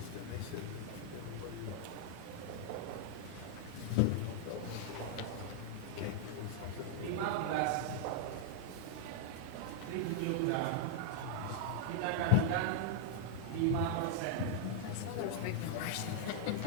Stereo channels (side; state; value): both; different; correlation -0.01